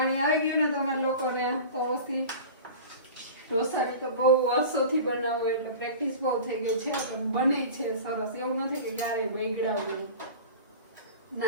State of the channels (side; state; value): both; inverted; correlation -0.36